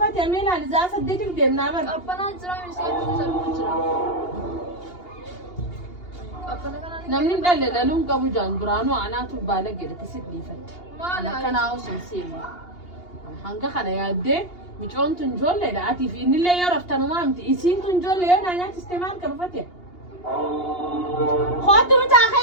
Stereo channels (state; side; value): late; right; 2.8 ms